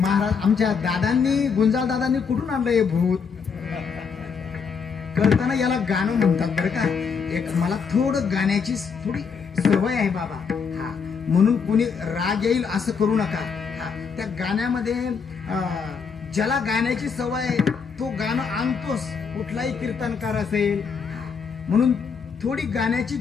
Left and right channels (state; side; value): quieter; right; 5.9 dB